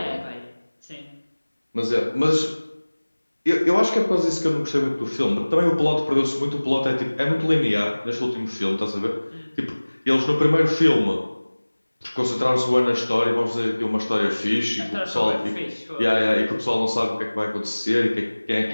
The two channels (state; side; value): inverted; both; correlation -1.00